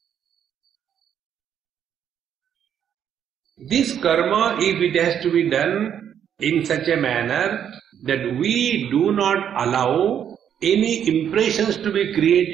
this karma, if it has to be done in such a manner that we do not allow any impressions to be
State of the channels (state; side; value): quieter; left; 9.0 dB